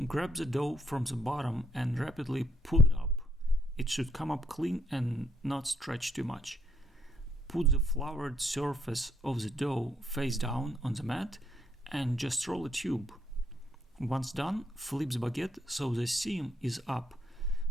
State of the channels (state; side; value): normal; both; correlation 0.70